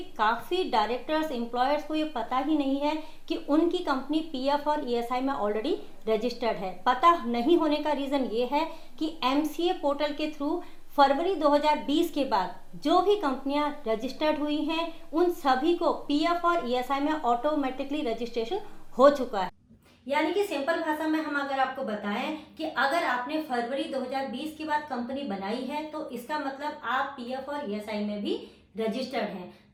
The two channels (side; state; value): both; identical; correlation 1.00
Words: काफ़ी डायरेक्टर्स, एम्प्लॉयर्स को ये पता ही नहीं है कि उनकी कंपनी पीएफ और ईएसआई में ऑलरेडी रजिस्टर्ड है। पता नहीं होने का रीज़न ये है कि एमसीए पोर्टल के थ्रू फरवरी 2020 के बाद जो भी कंपनियां रजिस्टर्ड हुई हैं उन सभी को पीएफ और ईएसआई में ऑटोमेटिकली रजिस्ट्रेशन हो चुका है। यानी कि सिंपल भाषा में हम अगर आपको बताएं कि अगर आपने फरवरी 2020 के बाद कंपनी बनाई है तो इसका मतलब आप पीएफ और ईएसआई में भी रजिस्टर्ड हैं।